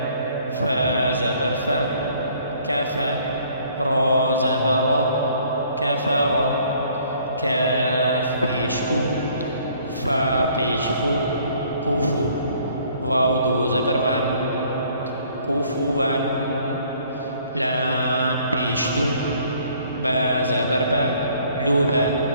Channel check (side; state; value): both; inverted; correlation -0.59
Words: فا زبر فا، كفا، را زبر را، كفر، كاف پیشکو، فا پیشفو، کوفو، واو دو زبر وان، کوفو وان، لام پیشلو، با زبر با، لوبا،